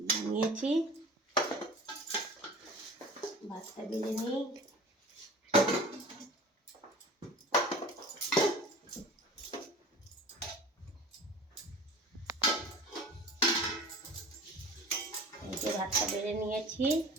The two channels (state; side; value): normal; both; correlation 0.40